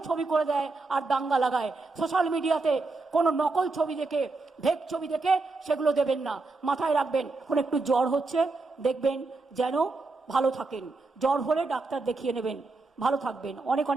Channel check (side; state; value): left; quieter; 3.6 dB